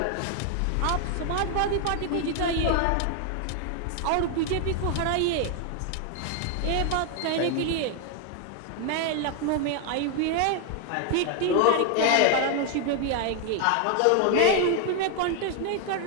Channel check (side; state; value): both; different; correlation 0.00